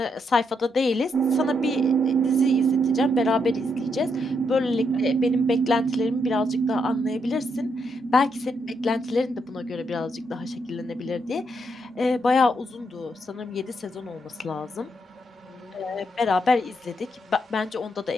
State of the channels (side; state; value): both; normal; correlation 0.78